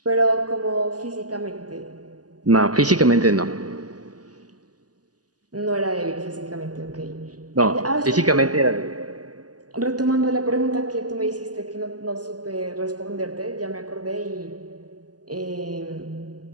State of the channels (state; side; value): late; left; 0.68 ms